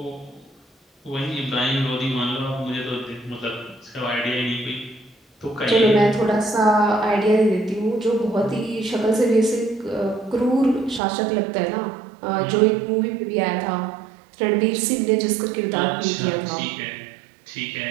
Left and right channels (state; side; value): drops out; left; at 11.0 s